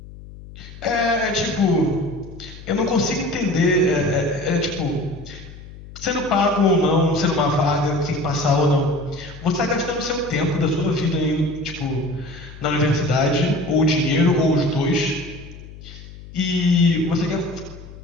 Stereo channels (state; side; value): noise; left; hum, 16 dB below the sound